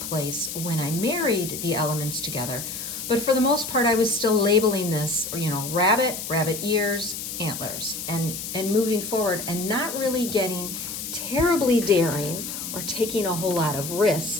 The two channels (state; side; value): noise; left; hiss, 7 dB below the sound